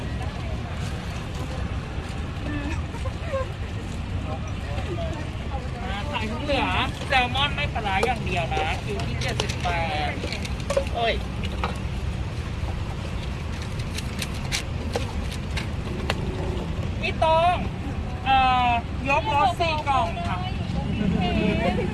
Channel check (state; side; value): identical; both; correlation 1.00